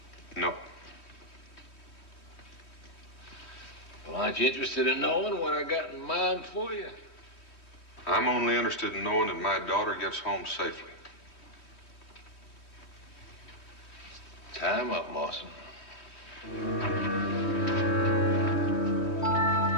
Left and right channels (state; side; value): late; right; 3.2 ms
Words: No. Well, aren't you interested in knowing what I got in mind for you? I'm only interested in knowing that my daughter gets home safely. Time up, Mawson.